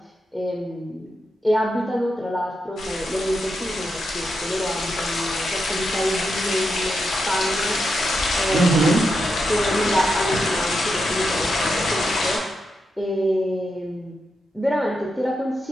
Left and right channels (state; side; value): normal; both; correlation 0.85